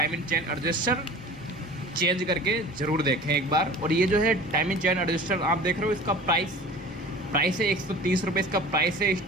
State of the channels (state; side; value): normal; both; correlation 0.41